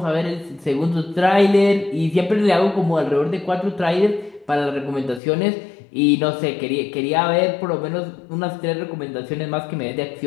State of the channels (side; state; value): right; drops out; at 5.2 s